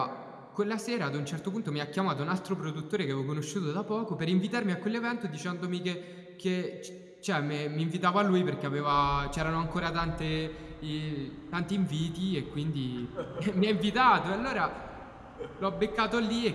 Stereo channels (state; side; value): identical; both; correlation 1.00